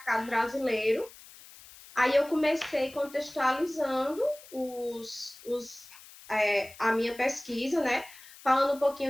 brasileiro. Aí eu comecei contextualizando a minha pesquisa, né? Falando um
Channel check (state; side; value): noise; left; hiss, 20 dB below the sound